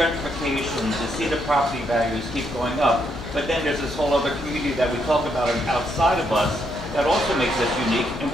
to see the property values keep going up. But then there's this whole other community that we talk about outside of us that also makes us unique. And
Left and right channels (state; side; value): normal; both; correlation 0.76